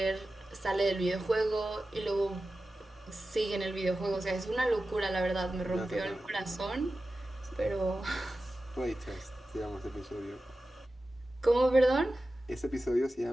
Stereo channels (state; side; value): normal; both; correlation 0.94